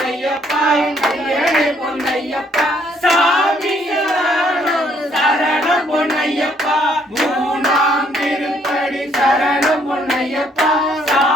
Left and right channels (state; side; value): normal; both; correlation 0.67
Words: ஐயனே பொன்னையப்பா சாமி சரணம் பொன்னையப்பா மூணாம் திருப்படி சரணம் பொன்னையப்பா